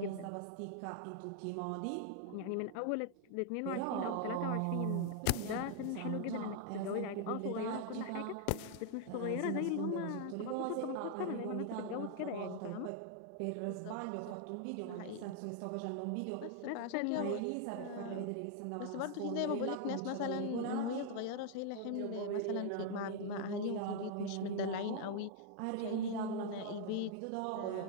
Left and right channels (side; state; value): both; different; correlation 0.00